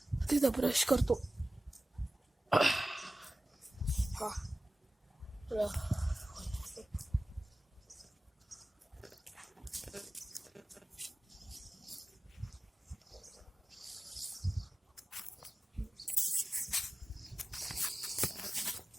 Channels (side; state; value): both; normal; correlation 0.96